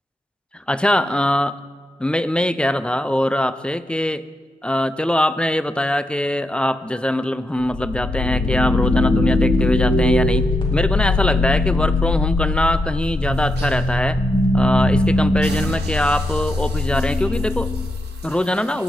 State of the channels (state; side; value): normal; both; correlation 0.84